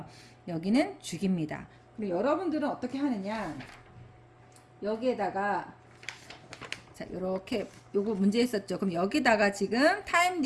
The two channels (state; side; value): identical; both; correlation 1.00